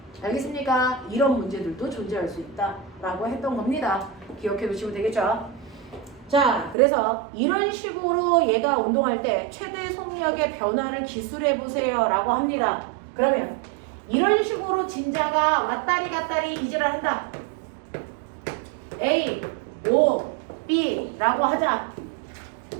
알겠습니까? 이런 문제들도 존재할 수 있다라고 했던 겁니다. 기억해 두시면 되겠죠? 자, 그래서 이런 식으로 얘가 운동할 때 최대 속력의 변화를 기술해 보세요 라고 합니다. 그러면 이런 식으로 진자가 왔다리 갔다리 이질을 한다. A, O, B 라고 하자.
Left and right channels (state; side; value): drops out; left; at 6.8 s